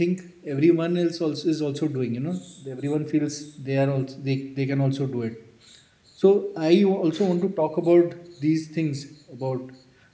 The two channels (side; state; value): both; identical; correlation 1.00